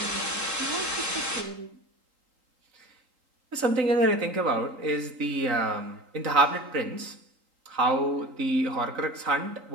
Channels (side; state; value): left; late; 3.8 ms